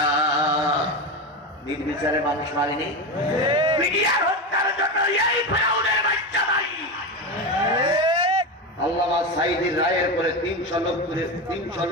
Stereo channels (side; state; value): both; normal; correlation 0.18